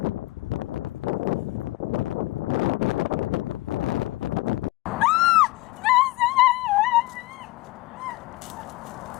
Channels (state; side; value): quieter; right; 20.1 dB